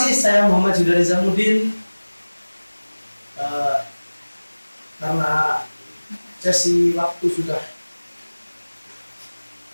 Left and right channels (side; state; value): both; inverted; correlation -1.00